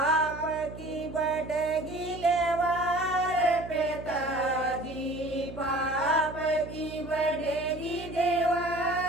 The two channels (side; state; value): right; noise; hum, 13 dB below the sound